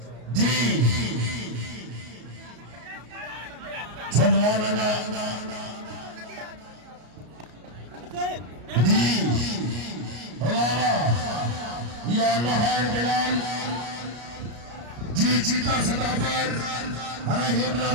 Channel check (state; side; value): late; left; 33 ms